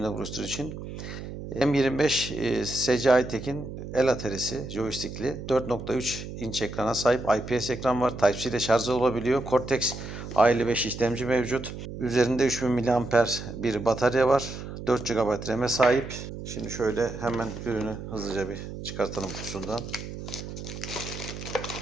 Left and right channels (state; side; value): noise; right; hum, 9 dB below the sound